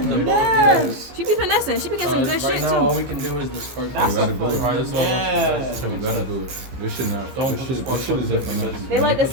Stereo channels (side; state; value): left; late; 15 ms